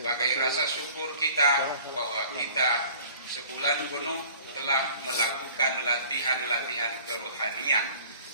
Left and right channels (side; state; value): both; inverted; correlation -0.48